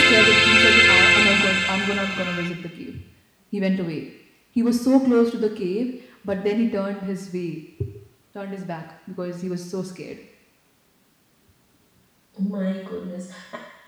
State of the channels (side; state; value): both; identical; correlation 1.00